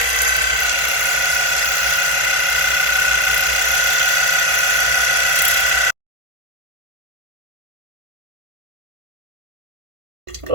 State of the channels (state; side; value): late; left; 1.5 ms